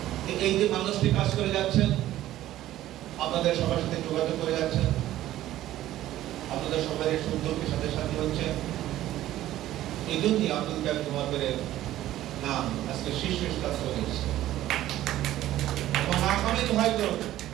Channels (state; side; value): quieter; left; 14.0 dB